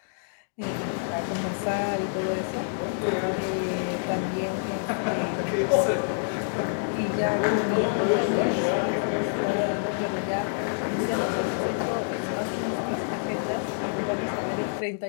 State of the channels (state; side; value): silent; right; digital silence